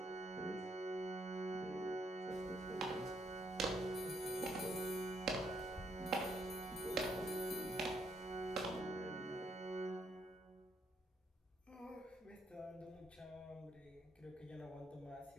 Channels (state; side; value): normal; both; correlation 0.73